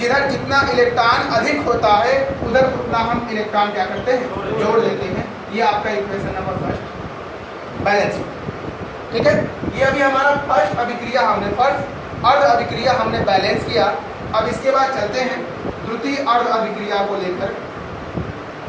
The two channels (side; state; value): both; identical; correlation 1.00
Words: जितना इलेक्ट्रॉन अधिक होता है उधर उतना हम इलेक्ट्रॉन क्या करते हैं, जोड़ देते हैं। ये आपका इक्वेशन नंबर फर्स्ट बैलेंस, ठीक है। ये अभी हमारा फर्स्ट अभिक्रिया हमने फर्स्ट अर्ध अभिक्रिया हमने बैलेंस किया। अब इसके बाद चलते हैं द्वितीय अर्ध अभिक्रिया को लेकर।